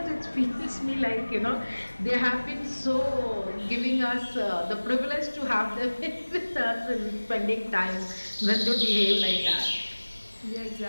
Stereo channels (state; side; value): inverted; both; correlation -1.00